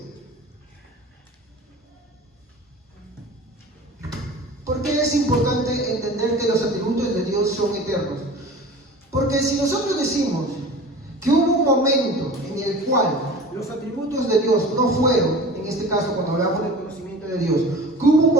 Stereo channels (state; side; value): normal; both; correlation 0.38